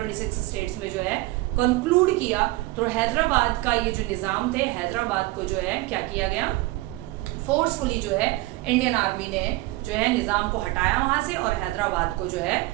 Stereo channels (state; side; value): quieter; left; 19.9 dB